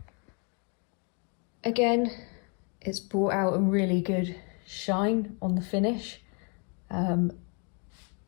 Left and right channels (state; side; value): quieter; right; 35.4 dB